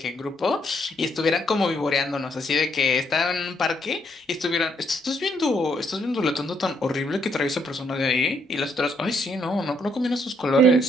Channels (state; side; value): normal; both; correlation 0.73